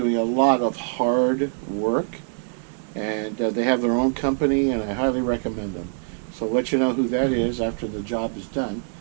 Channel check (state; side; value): silent; left; digital silence